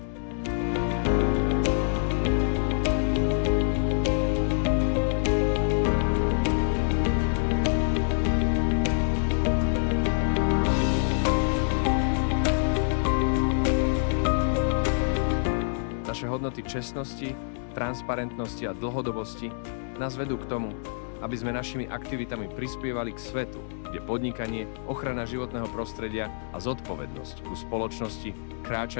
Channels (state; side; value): silent; right; digital silence